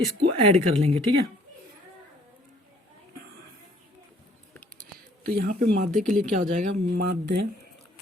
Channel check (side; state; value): both; normal; correlation 0.60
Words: ऐड कर लेंगे, ठीक है। तो यहाँ पे माध्य के लिए क्या हो जाएगा, माध्य